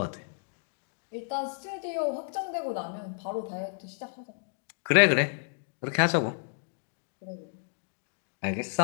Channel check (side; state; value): right; silent; digital silence